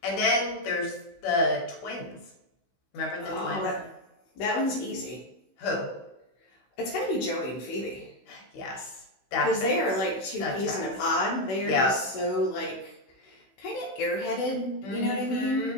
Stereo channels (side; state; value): right; late; 16 ms